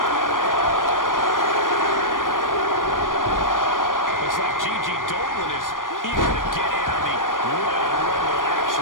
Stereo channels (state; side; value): late; right; 0.90 ms